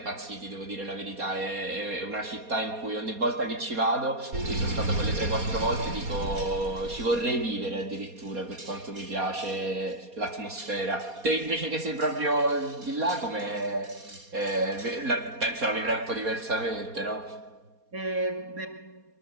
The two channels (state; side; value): late; left; 4.2 ms